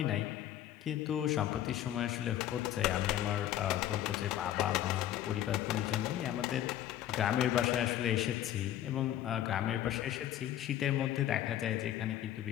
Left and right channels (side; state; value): right; quieter; 12.0 dB